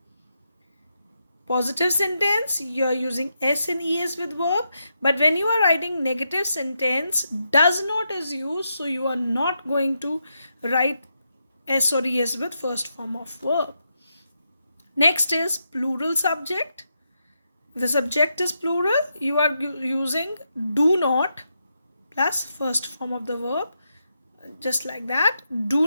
Positive sentence, you are using S and ES with verb, but when you are writing negative sentence, does not is used, so you are not going to write S or ES with first form of verb. Next is plural subject. The subject is plural, you are using do not plus first form of the verb, just like that. Do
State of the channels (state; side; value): inverted; both; correlation -0.83